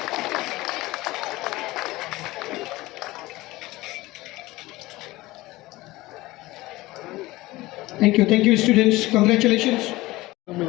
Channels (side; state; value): right; quieter; 19.2 dB